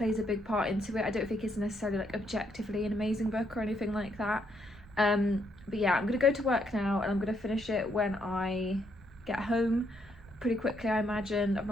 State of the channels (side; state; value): right; noise; rumble, 22 dB below the sound